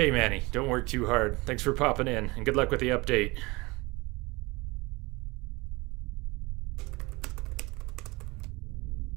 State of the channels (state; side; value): quieter; left; 24.0 dB